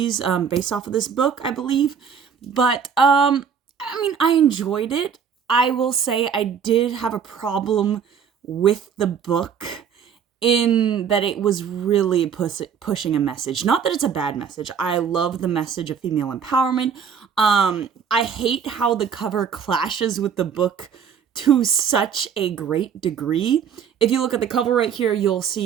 based off of this book, I believe. But, I enjoyed it. I will say I did have a problem with the book in that it was really pushing a message. Not that it's a bad message. I love the message of female empowerment. I hate how the cover clashes with the book to such a great degree. If you look at the cover right here, you'll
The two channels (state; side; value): quieter; left; 7.2 dB